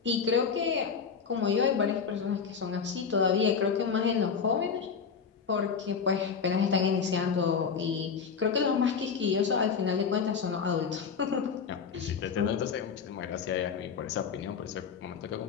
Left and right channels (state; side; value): quieter; right; 6.2 dB